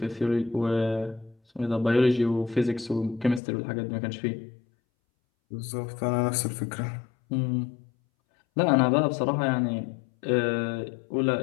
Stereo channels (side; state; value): right; drops out; at 3.4 s